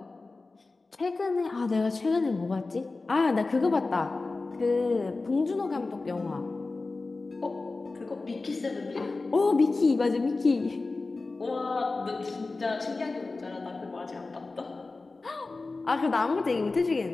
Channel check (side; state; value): right; quieter; 3.6 dB